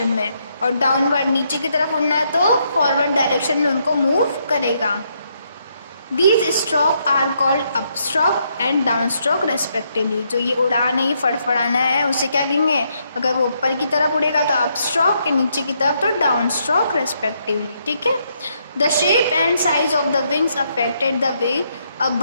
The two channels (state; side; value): inverted; both; correlation -0.76